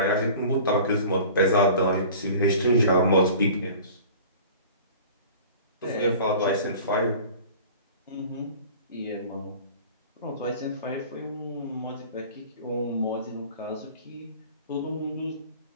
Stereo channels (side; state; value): both; inverted; correlation -0.42